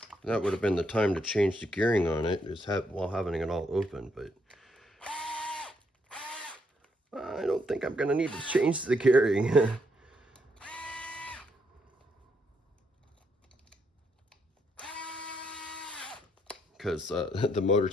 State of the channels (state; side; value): normal; both; correlation 0.76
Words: That would have been the time to change the gearing on it, while having it all open, but I don't think I'm gonna need to change the gearing. because the motor